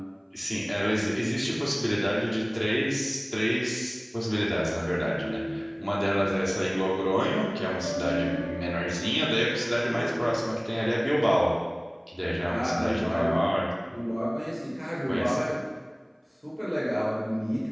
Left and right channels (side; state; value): both; identical; correlation 1.00